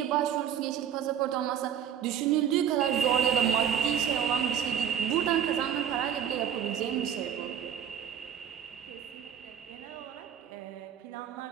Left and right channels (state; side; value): quieter; left; 9.1 dB